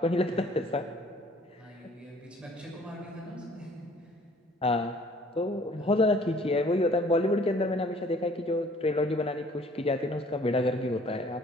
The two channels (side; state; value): both; normal; correlation 0.56